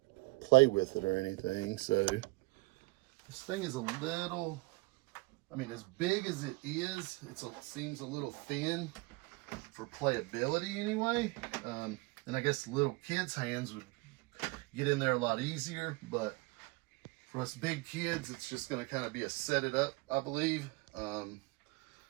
play with it or anything. So this thing is a little, I mean, as big as it is, it seems a little thin for playability anyway. And I guess little kids' hands would get in there a lot easier, but for us big kids, it's just going to kind of be a set it up, I believe.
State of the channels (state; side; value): quieter; left; 24.8 dB